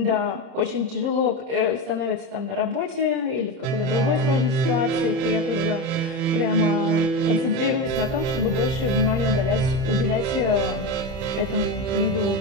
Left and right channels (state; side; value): late; left; 30 ms